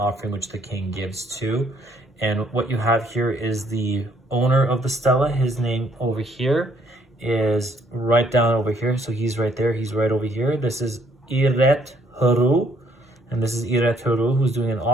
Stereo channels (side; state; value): both; normal; correlation 0.67